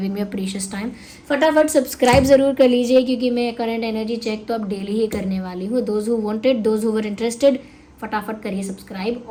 me a precious time. फटाफट सब्सक्राइब ज़रूर कर लीजिए, क्योंकि मैं करंट एनर्जी चेक तो अब डेली ही करने वाली हूँ। Those who wanted, those who were interested, फटाफट करिए सब्सक्राइब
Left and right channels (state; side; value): identical; both; correlation 1.00